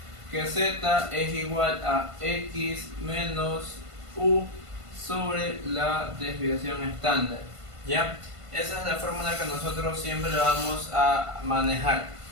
Que z es igual a x menos u sobre la desviación estándar. ¿Ya? Esa es la fórmula que nosotros siempre vamos a manejar.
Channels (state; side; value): late; left; 1.5 ms